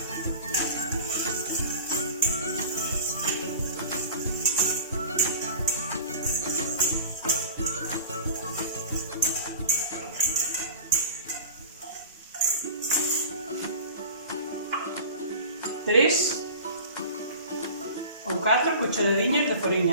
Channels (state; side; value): inverted; both; correlation -0.39